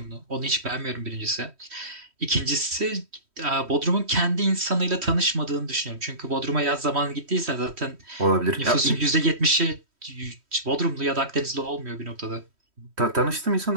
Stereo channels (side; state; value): left; late; 3.1 ms